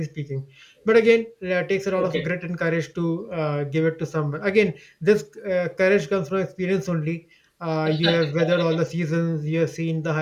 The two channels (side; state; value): both; identical; correlation 1.00